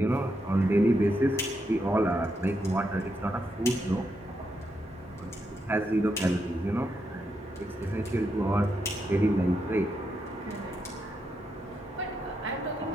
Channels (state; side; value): normal; both; correlation 0.82